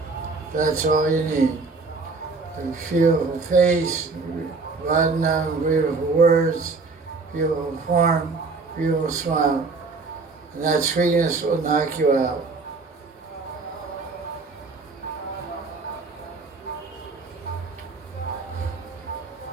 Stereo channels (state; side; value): quieter; left; 4.1 dB